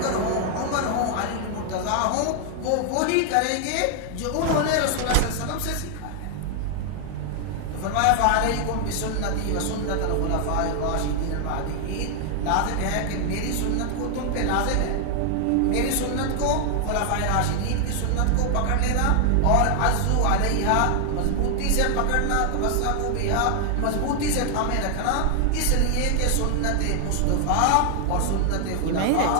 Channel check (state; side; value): different; both; correlation 0.00